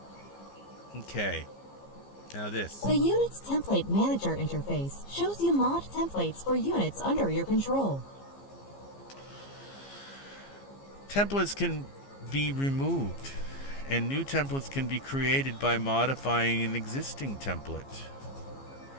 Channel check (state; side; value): late; right; 15 ms